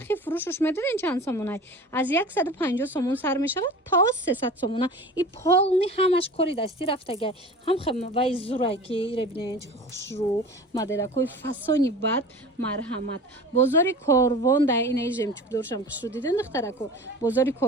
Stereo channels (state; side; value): normal; both; correlation 0.38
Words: фурӯшуш медонен чанд сомонай аз 150 сомон сар мешавад то 300 сомона и полни ҳамаш кори дастӣ рафтагай ҳам вай зурай ки ире бинен чӣ хушрӯ моделакои фасони бад марҳамат бозори корвон да инаи жемчугдоршам хушрӯ диден духтарако бозори